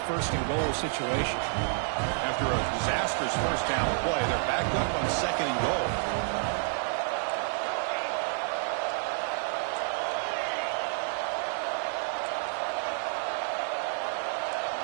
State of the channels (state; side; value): silent; left; 58 dB below the other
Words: first and goal situation. After a disastrous first down play, they're backed up on second and goal.